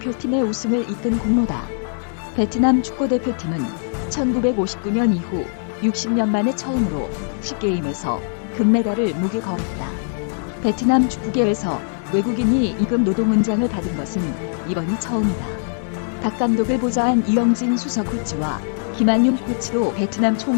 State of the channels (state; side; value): silent; right; 62 dB below the other